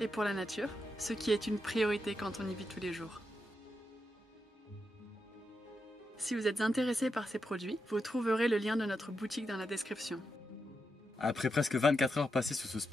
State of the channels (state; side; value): normal; both; correlation 0.86